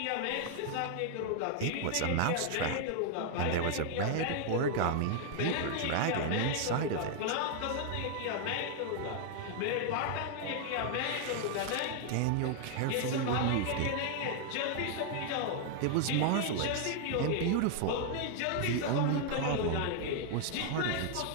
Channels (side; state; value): both; different; correlation 0.00